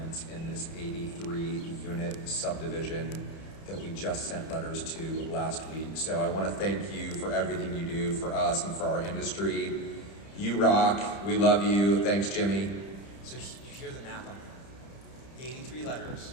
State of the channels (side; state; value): right; late; 30 ms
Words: in this 83-unit subdivision that we just sent letters to last week. So I want to thank you for everything you do for us and for our industry. You rock. We love you. Thanks, Jimmy. So you hear the math on that. 83 letters,